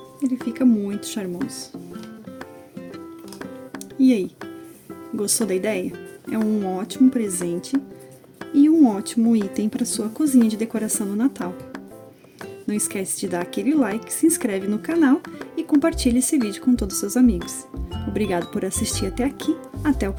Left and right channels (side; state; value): both; identical; correlation 1.00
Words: Ele fica muito charmoso. E aí, gostou da ideia? É um ótimo presente e um ótimo item para sua cozinha de decoração no Natal. Não esquece de dar aquele like, se inscreve no canal e compartilhe esse vídeo com todos os seus amigos. Obrigado por assistir até aqui, até o